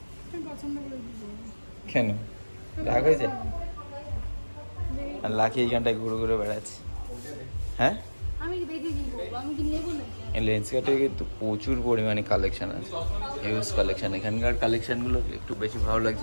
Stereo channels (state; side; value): inverted; both; correlation -1.00